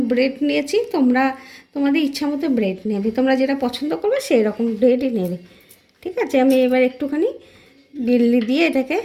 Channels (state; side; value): identical; both; correlation 1.00